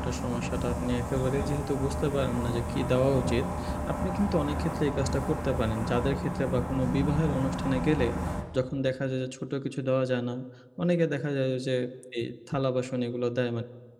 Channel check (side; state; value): both; identical; correlation 1.00